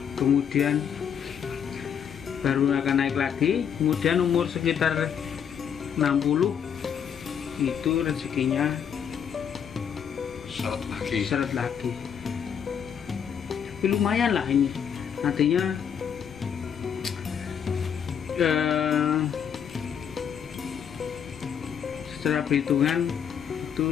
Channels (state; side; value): quieter; right; 7.9 dB